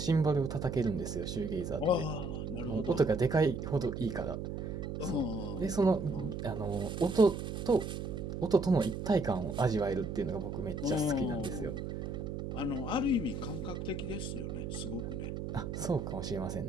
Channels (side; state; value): right; noise; hum, 5 dB below the sound